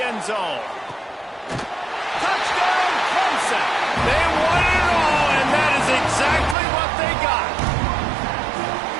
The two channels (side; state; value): left; drops out; at 6.6 s